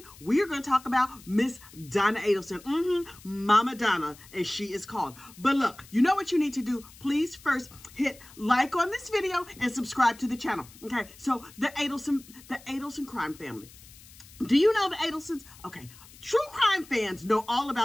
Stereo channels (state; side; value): noise; left; hiss, 21 dB below the sound